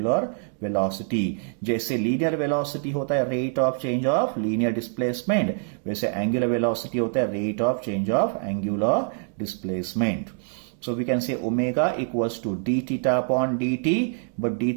वेलोसिटी। जैसे लीनियर वेलोसिटी होता है rate of change of linear displacement, वैसे एंगुलर वेलोसिटी होता है rate of change of angular displacement. So we can say omega equals to d theta upon dt, but d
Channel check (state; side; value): silent; left; 62 dB below the other